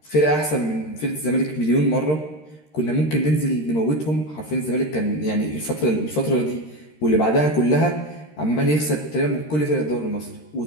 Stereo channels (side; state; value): right; late; 13 ms